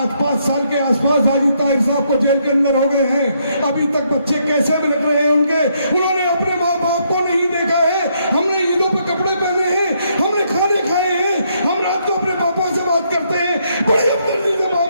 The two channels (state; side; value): inverted; both; correlation -0.74